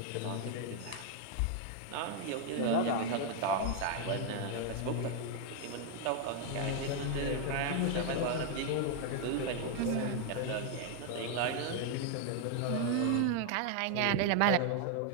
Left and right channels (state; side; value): different; both; correlation 0.00